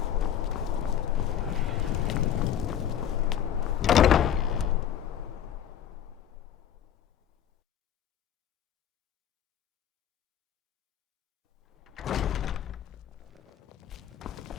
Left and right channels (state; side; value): quieter; right; 9.9 dB